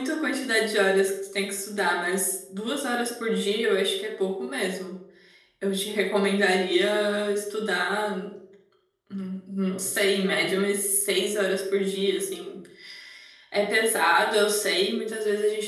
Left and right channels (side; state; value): both; identical; correlation 1.00